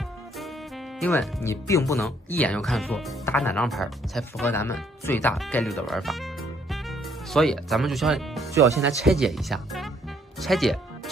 因为你并不能一眼就看出打哪张牌才符合咱们最大概率的玩法，所以咱们就要先来拆解一下。拆解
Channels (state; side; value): normal; both; correlation 0.66